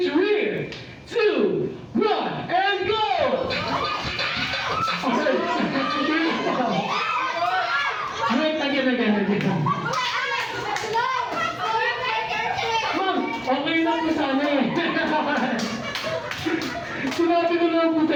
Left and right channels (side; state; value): both; identical; correlation 1.00